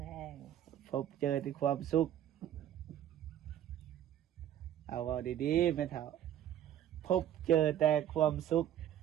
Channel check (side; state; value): left; quieter; 11.2 dB